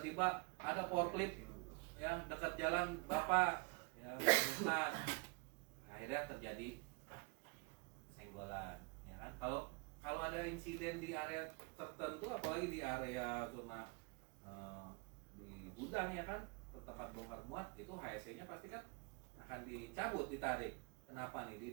ada forklift, ya dekat jalan Bapak, ya ya menemukan. Nah, akhirnya terjadi senggolan, ya kan? Kalau ada insiden di area tertentu, apalagi di area zona di gudang ya kan, tempat bongkar muat, itu HSE-nya pasti kan akan dicabut, ditarik. Kenapa nih?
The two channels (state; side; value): quieter; left; 29.5 dB